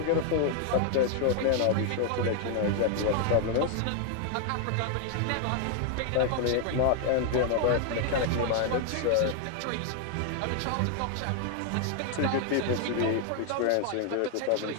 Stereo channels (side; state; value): both; different; correlation 0.00